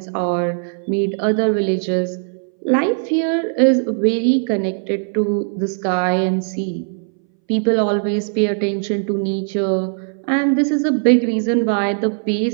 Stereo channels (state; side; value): silent; left; 63 dB below the other